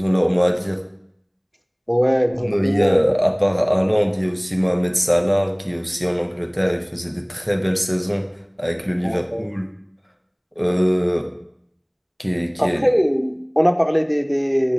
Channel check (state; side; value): identical; both; correlation 1.00